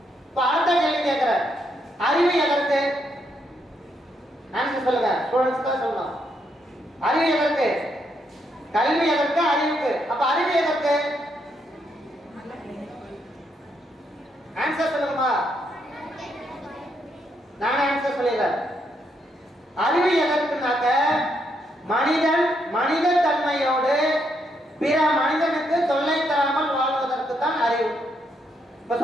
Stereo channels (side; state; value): both; normal; correlation 0.77